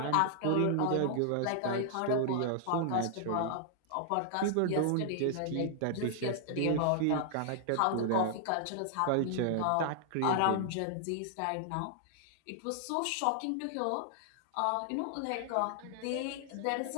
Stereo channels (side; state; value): both; different; correlation 0.00